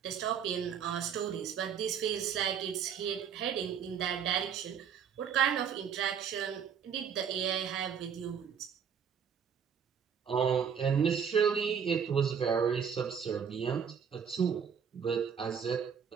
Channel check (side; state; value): left; quieter; 7.4 dB